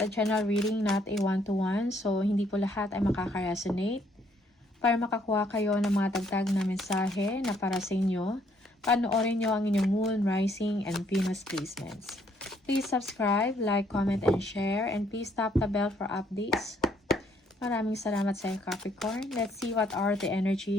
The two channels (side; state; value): both; normal; correlation 0.67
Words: a general reading, not a one-to-one, so hindi po lahat ay makaka-resonate. Para makakuha kayo ng mga dagdag na mensahe na para sa inyo, panoorin nyo ang inyong Moon, Rising, and Venus placements. Please subscribe, like, comment, and share, and please tap the bell for updates. Maraming salamat sa Capricorn. Let's see what are the